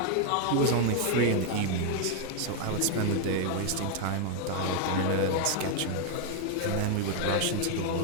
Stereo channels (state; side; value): different; both; correlation 0.00